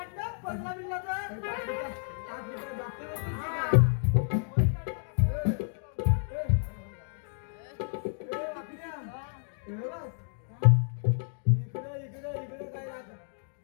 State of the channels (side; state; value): right; silent; digital silence